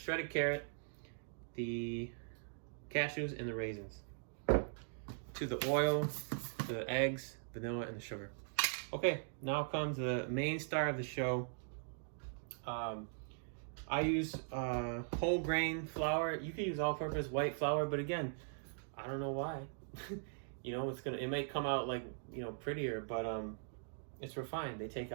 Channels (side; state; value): left; silent; digital silence